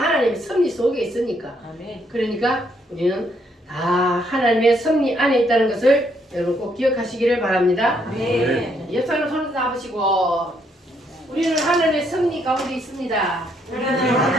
섭리 속에 있으니까. 아멘. 그러니까 우리는 다 하나님의 섭리 안에 있다는 것을 여러분 꼭 기억하시기를 바랍니다. 아멘. 옆 사람 손을 잡으시고 우리는 하늘의 승리 가운데 있습니다. 우리는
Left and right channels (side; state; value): both; normal; correlation 0.72